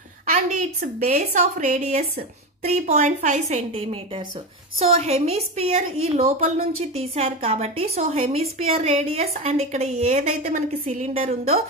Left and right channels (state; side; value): normal; both; correlation 0.19